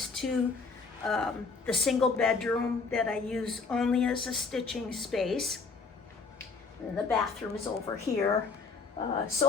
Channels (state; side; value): quieter; right; 4.6 dB